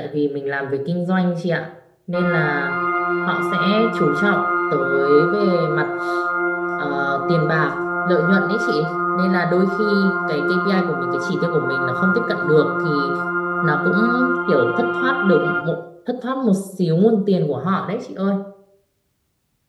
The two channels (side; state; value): both; identical; correlation 1.00